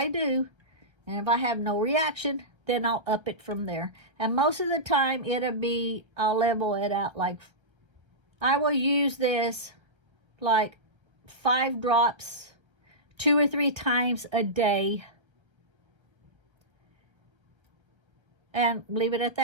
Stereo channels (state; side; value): late; left; 1.3 ms